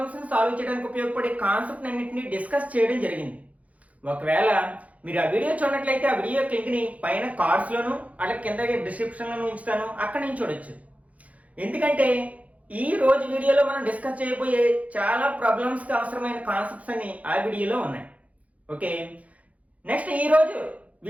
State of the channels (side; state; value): left; late; 0.068 ms